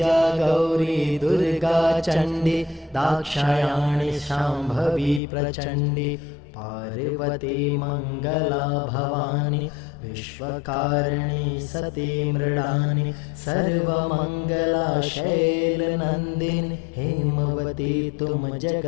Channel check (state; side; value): drops out; right; at 5.2 s